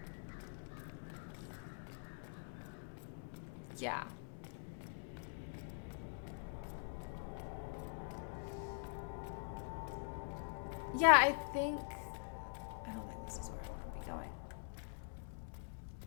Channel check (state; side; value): silent; right; digital silence